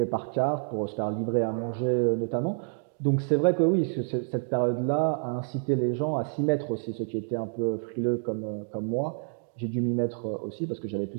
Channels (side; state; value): left; silent; digital silence